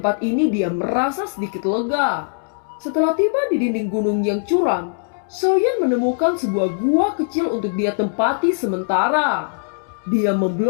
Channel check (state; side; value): silent; right; digital silence